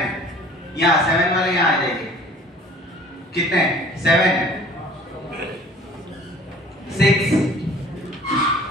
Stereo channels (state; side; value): normal; both; correlation 0.50